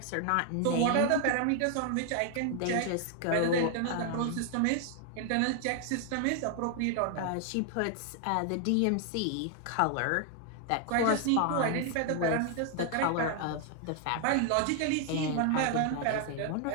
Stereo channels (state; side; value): different; both; correlation 0.00